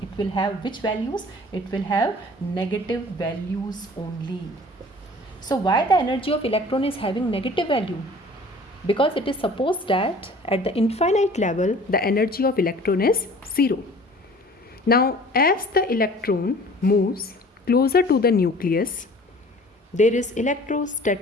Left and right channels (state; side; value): normal; both; correlation 0.48